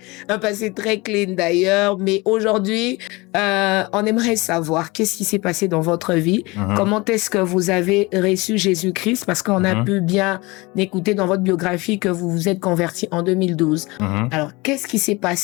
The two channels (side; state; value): right; quieter; 23.7 dB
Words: passé très clean d'ailleurs, mais aujourd'hui, on aimerait savoir qu'est-ce qui s'est passé dans votre vie, comment est-ce que vous avez reçu Jésus-Christ, parce qu'on a pu bien écouter dans votre biographie que vous vous êtes converti en 2012. Alors, qu'est-ce qui s'est